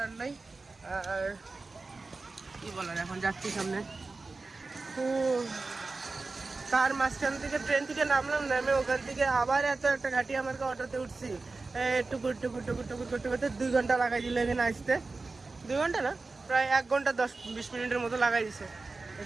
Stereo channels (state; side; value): quieter; left; 3.7 dB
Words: নাই। আর কি বলার, এখন যাচ্ছি সামনে। তো তার মাঝখান থেকে ট্রেন থেকে নামলাম, নামে ওখান থেকে আবার এত একটা ঘাটি আমাকে অটোতে উঠছি, টুকুর টুকুর টুকুর টুকুর করতে করতে 2 ঘন্টা লাগাই দিল এখানে আসতে। 2 ঘন্টা না, প্রায় 1 ঘন্টা 10-20 মিনিটের মতো লাগাই দিছে